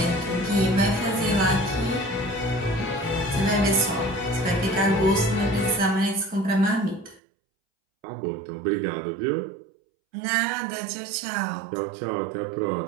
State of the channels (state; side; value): drops out; left; at 7.2 s